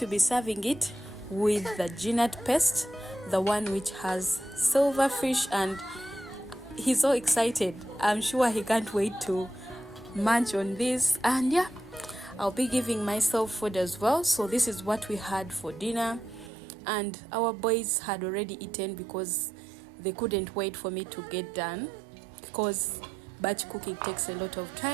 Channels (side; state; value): left; drops out; at 16.5 s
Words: be serving it with the ginat paste, the one which has silverfish, and he's so excited. I'm sure he can't wait to munch on this. And yeah, I'll be giving myself food as well. So this is what we had for dinner, and our boys had already eaten because they couldn't wait for me to get done, because batch cooking takes a lot of